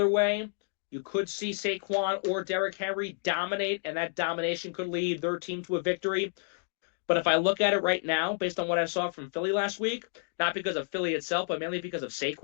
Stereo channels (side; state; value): right; silent; digital silence